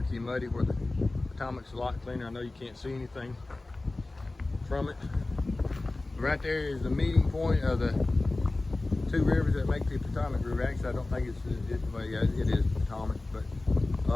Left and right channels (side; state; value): right; quieter; 3.0 dB